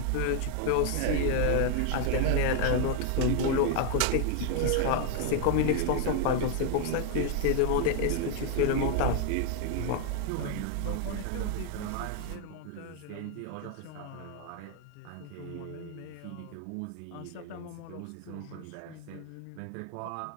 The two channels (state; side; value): different; both; correlation 0.00